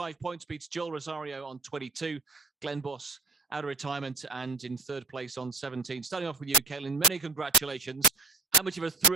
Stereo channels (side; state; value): left; quieter; 3.8 dB